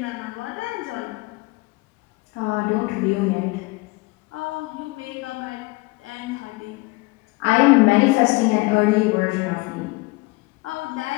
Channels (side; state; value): right; quieter; 24.3 dB